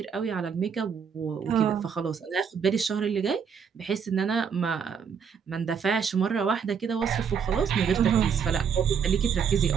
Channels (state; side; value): quieter; left; 6.9 dB